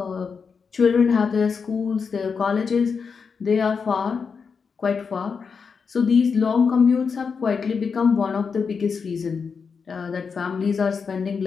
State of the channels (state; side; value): quieter; right; 5.6 dB